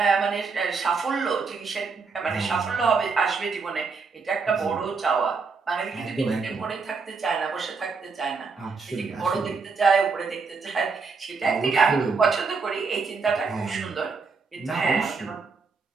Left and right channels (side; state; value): left; quieter; 4.8 dB